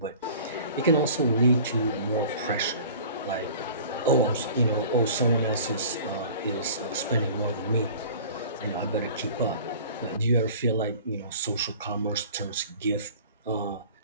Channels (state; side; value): inverted; both; correlation -0.45